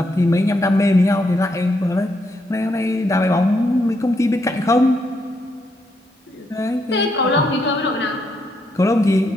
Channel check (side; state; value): both; normal; correlation 0.78